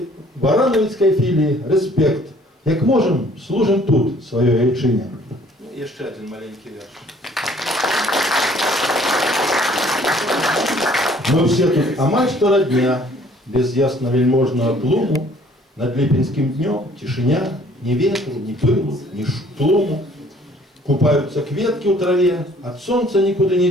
філіі рэспект. Як можам, служым тут сваёй айчыне. Яшчэ адзін маленькі верш. Мы все тут амаль што радня, без ясна-вельможнага тлуму. Над ліпеньскім днём цішыня, ни ветру, ни пылу, ни штлуму. Купаются кветки у траве, от солнца никуда не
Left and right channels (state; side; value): normal; both; correlation 0.57